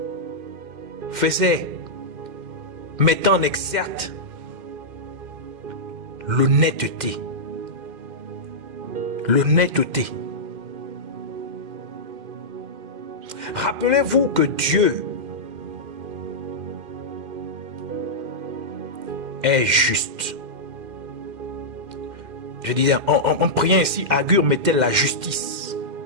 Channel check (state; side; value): late; left; 2.1 ms